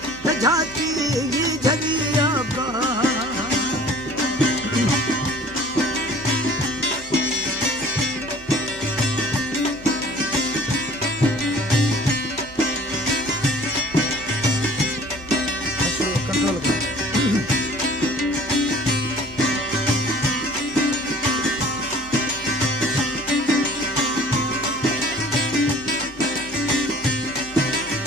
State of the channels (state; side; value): normal; both; correlation 0.49